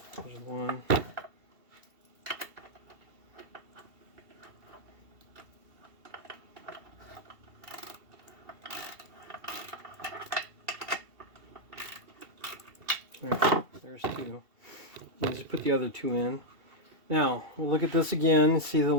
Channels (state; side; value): late; left; 2.7 ms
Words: There's one. There's two. You just put the other two in. Now we'll look at this again. See the